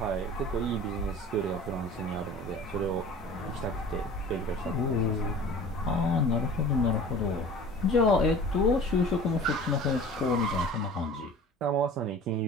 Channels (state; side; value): normal; both; correlation 0.42